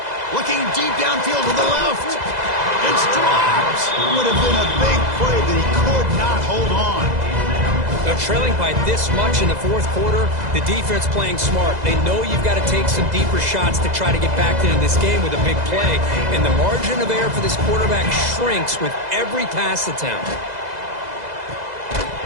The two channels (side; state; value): left; late; 2.0 ms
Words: Looking deep downfield to the left. It's dropped. Would have been a big play, but he could not hold on. Now, trailing by this much in the fourth quarter, the defense playing smart. They know you've got to take some deeper shots to try to get back into this game with a big play. And the margin of error for this quarterback shrinks with every pass attempt.